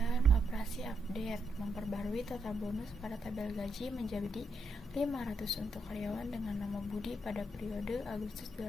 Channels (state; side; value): normal; both; correlation 0.79